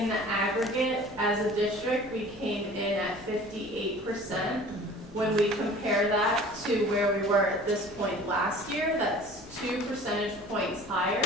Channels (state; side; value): normal; both; correlation 0.45